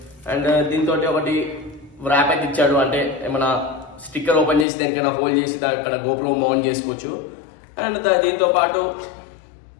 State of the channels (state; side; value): drops out; right; at 4.7 s